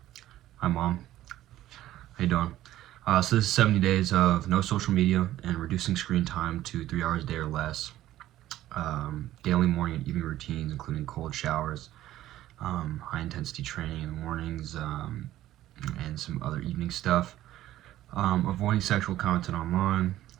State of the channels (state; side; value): quieter; left; 14.1 dB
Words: Hi Mom, how you doing? So this is 70 days of no social media and reducing screen time to 3 hours a day or less. Daily morning and evening routines including cold showers, high intensity training in the mornings, and some other evening stuff. Avoiding sexual content online,